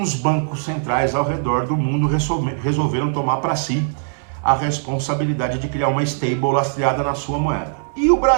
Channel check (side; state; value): left; silent; digital silence